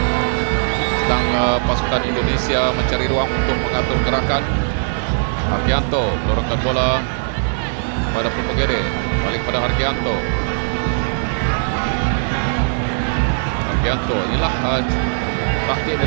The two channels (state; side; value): silent; left; 64 dB below the other